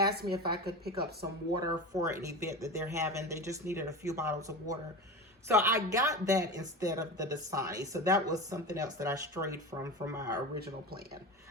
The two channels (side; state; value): both; normal; correlation 0.27